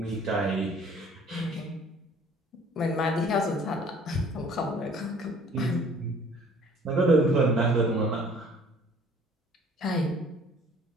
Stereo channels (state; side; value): normal; both; correlation 0.53